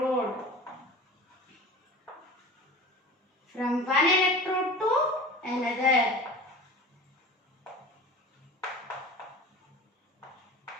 From one electrode to another.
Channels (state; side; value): normal; both; correlation 0.36